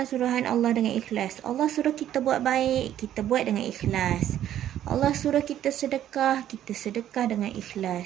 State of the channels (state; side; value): quieter; left; 11.4 dB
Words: suruhan Allah dengan ikhlas. Allah suruh kita buat baik, kita buat dengan ikhlas. Allah suruh kita sedekah, kita sedekah dengan